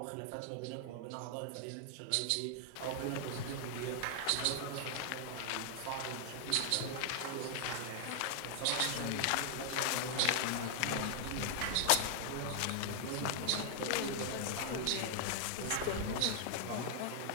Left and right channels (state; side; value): different; both; correlation 0.00